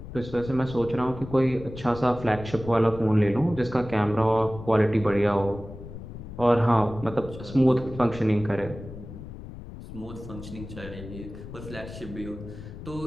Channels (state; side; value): noise; left; rumble, 12 dB below the sound